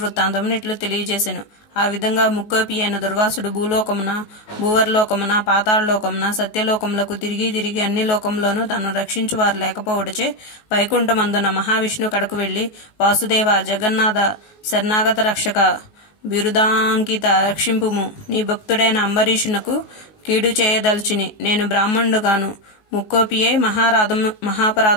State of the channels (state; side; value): late; right; 19 ms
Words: వృత్తాంతమును ఇట్లు తెలియజేసెను. ఆ విధంగా ముక్కోపి అయిన దుర్వాసుడు భూలోకమున, భూవర్లోకమున, పాతాళలోకమున, సత్యలోకములకు తిరిగి తిరిగి అన్ని లోకములోనూ తను రక్షించు వారు లేకపోవటచే వైకుంఠమందున మహావిష్ణు కడకు వెళ్లి, వాసుదేవ, జగన్నాథ, శరణాగత రక్షక, బిరుదాంకిత, రక్షింపుము. నీ భక్తుడైన అంబరీషునకు కీడు చేయదల్చిని. నేను బ్రాహ్మణుడుగాను ముక్కోపియే